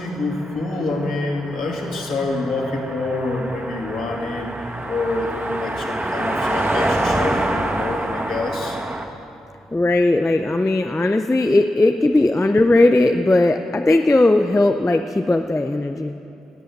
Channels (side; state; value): both; normal; correlation 0.91